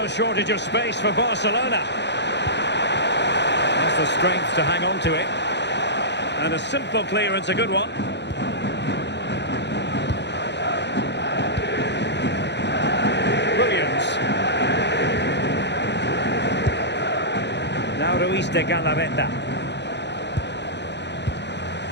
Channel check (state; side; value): late; right; 0.50 ms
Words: shortage of space for Barcelona. That's the strength to hang on to it. And a simple clearance, a good one. Williams. Now Ruiz de Galarreta.